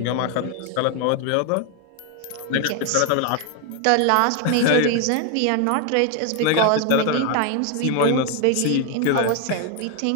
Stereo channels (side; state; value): both; different; correlation 0.01